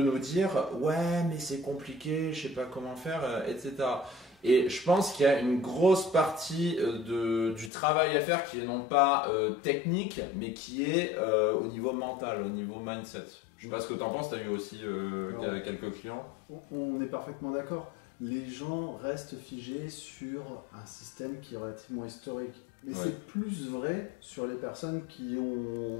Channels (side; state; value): right; drops out; at 7.7 s